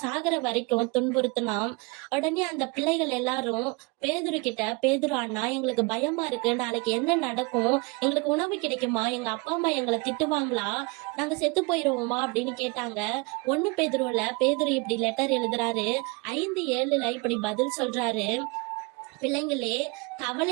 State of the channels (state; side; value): quieter; left; 28.6 dB